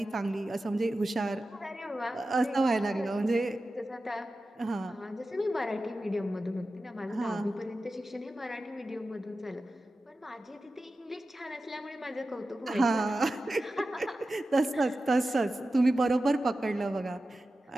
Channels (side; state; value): both; normal; correlation 0.93